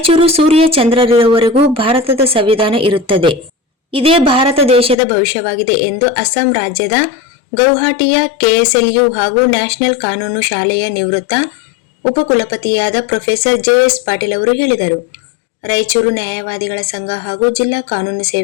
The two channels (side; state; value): right; drops out; at 5.0 s